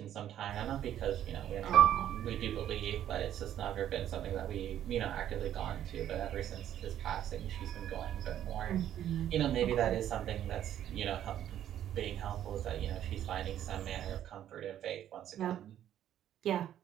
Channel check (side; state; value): left; quieter; 11.1 dB